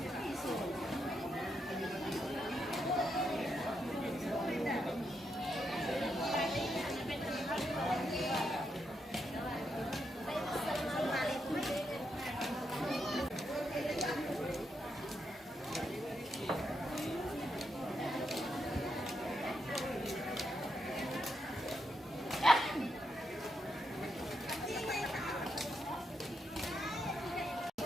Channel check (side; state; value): both; normal; correlation 0.82